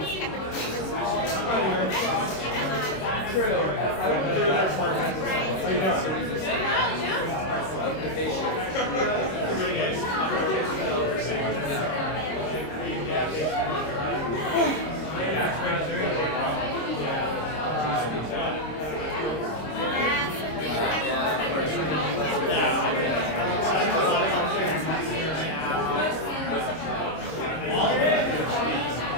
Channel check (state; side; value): late; right; 26 ms